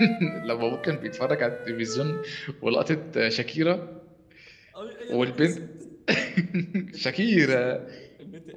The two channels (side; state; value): both; identical; correlation 1.00